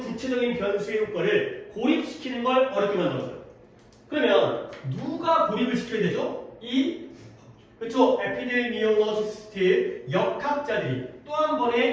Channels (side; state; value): both; identical; correlation 1.00